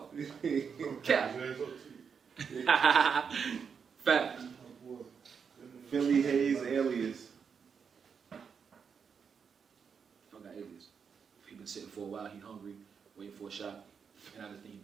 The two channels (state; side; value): quieter; left; 6.4 dB